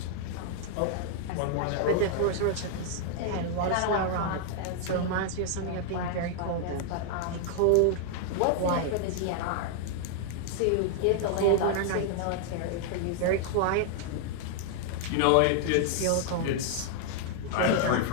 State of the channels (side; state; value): both; different; correlation 0.00